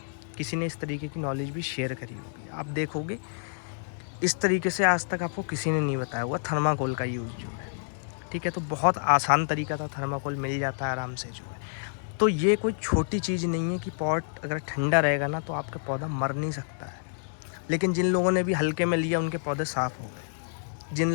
किसी ने इस तरीके की नॉलेज भी शेयर करी होगी। आप देखोगे इस तरीके से आज तक आपको किसी ने नहीं बताया हुआ थर्माकोल का यूज़ जो है, ठीक है। तो बहुत आसान तरीका था, थर्माकोल मिल जाता है आराम से जो है। तो ये कोई छोटी चीज़ नहीं है कि पॉट अगर ठंडा रहेगा ना तो आपका पौधा मर नहीं सकता है। लेकिन जिन लोगों ने भी हल्के में लिया उनके पौधे साफ़ हो गए। जिन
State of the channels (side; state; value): right; silent; digital silence